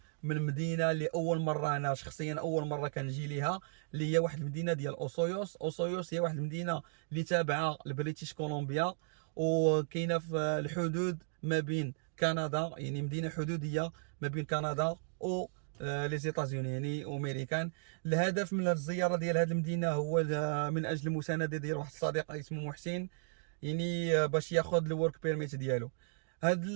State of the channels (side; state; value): left; silent; digital silence